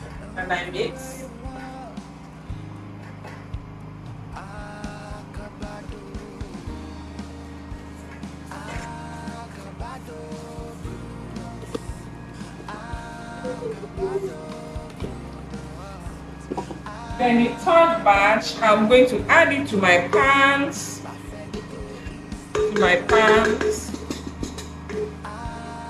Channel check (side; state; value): both; identical; correlation 1.00